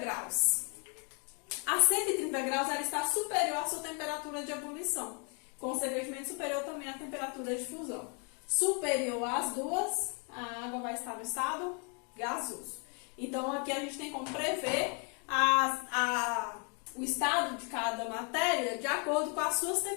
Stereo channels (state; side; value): quieter; right; 37.4 dB